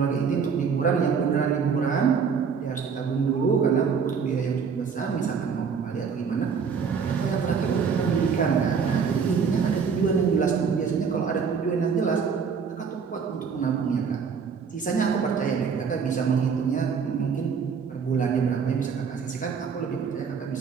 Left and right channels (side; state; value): left; quieter; 6.1 dB